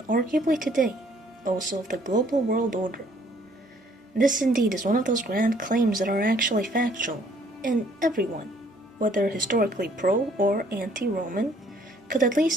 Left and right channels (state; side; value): normal; both; correlation 0.62